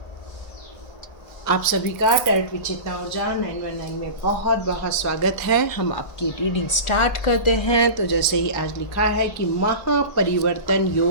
आप सभी का tarot with चेतना ऊर्जा 919 में बहुत बहुत स्वागत है। हम आपकी रीडिंग स्टार्ट करते हैं। तो जैसे ही आज लिखा है कि महापरिवर्तन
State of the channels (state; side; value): late; right; 1.3 ms